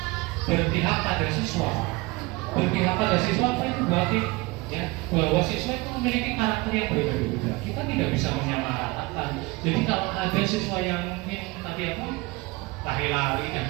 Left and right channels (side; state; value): left; quieter; 23.2 dB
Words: berpihak pada siswa. Berpihak pada siswa apa itu berarti ya bahwa siswa itu memiliki karakter yang berbeda-beda. Kita tidak bisa menyamaratakan. Jadi kalau ada siswa yang tadi lari-lari dan